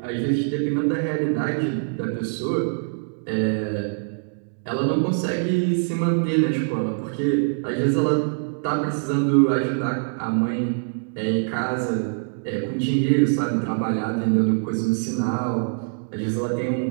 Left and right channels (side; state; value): left; silent; digital silence